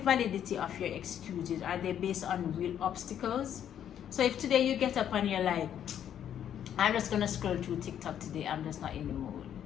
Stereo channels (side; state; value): right; quieter; 9.8 dB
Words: of your excuses. Are they based on real obstacles? So if today you get up and you're like, I'm just going to scroll through TikTok today, I'm just not in the mood.